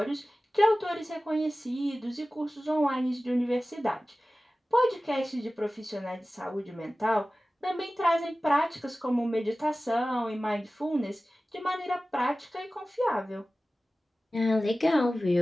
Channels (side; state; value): both; normal; correlation 0.96